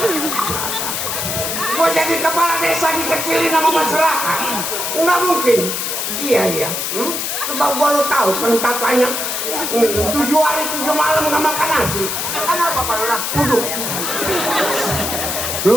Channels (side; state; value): left; noise; hiss, 2 dB below the sound